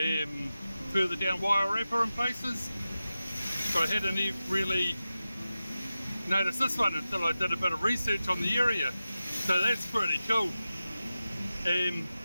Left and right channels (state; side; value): inverted; both; correlation -0.94